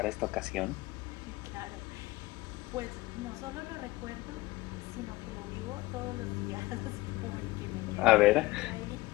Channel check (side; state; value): right; quieter; 20.5 dB